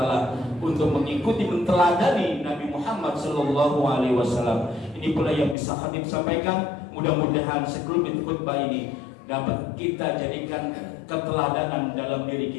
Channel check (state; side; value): drops out; right; at 5.6 s